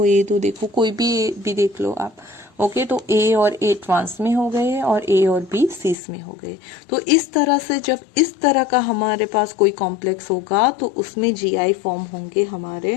ये दो, देखो कोई भी देख लो आप। ओके, तो A और A ट्रांस में हो गए और A और B सिस में हो गए। तो इस तरह से जब इस तरह का हमारे पास कोई कॉम्प्लेक्स होगा तो उसमें GI फॉर्म होंगे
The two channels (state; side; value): drops out; right; at 6.0 s